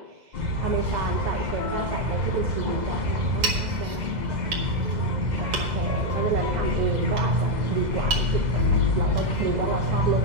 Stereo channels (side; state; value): left; late; 2.0 ms